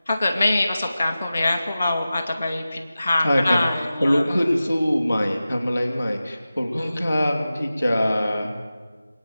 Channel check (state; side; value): inverted; both; correlation -0.95